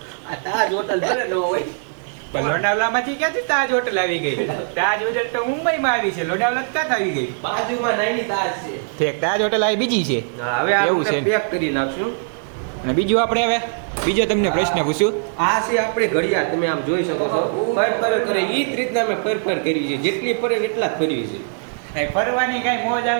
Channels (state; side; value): silent; left; 65 dB below the other